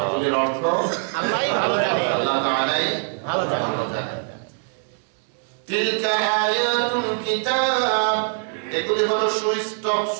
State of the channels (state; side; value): silent; left; 62 dB below the other